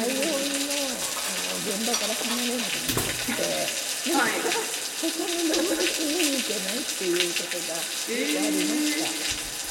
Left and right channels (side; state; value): both; identical; correlation 1.00